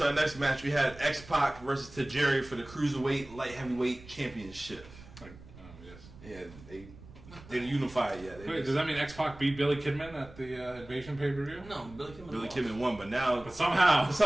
our next match we had X-Pac versus Tajiri for the Cruiserweight Light Heavyweight Championship. Yes. Yeah, they didn't unify it yet. They Wait, just- does that mean X-Pac beat Billy Kidman at the Invasion pay-per-view? No, Billy Kidman. Billy lost. Kidman won, but now But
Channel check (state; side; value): noise; right; rumble, 19 dB below the sound